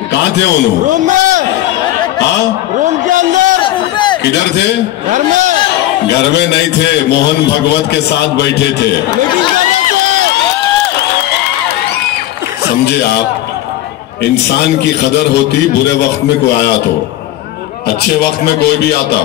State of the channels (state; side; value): quieter; right; 14.4 dB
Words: कहाँ थे उन्होंने? रूम में। हाँ, रूम के अंदर। किधर थे? घर में। घर में नहीं थे, मोहन भगवत के साथ बैठे थे। समझे आप? इंसान की कदर होती बुरे वक्त में कोई आया तो, अच्छे वक्त में कोई भी आता।